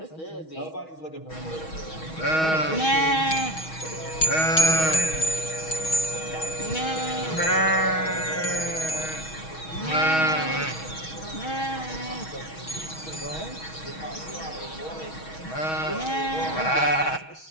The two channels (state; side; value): late; right; 6.3 ms